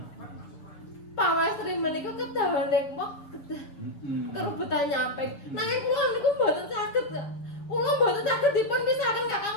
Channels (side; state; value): right; late; 6.8 ms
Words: Pawastri menika kedawane mok kerubutan nyamping. Nanging kula niku mboten saged. Kula mboten saged dipun pisahaken Kakang